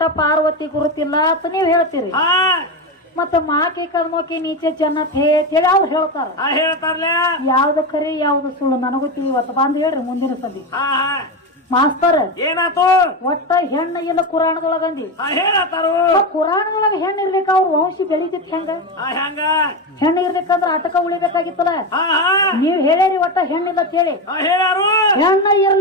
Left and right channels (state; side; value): normal; both; correlation 0.16